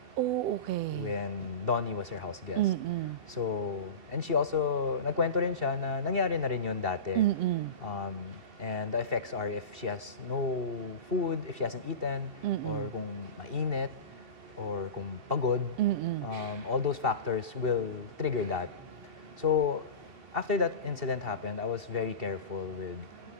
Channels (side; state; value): left; late; 2.7 ms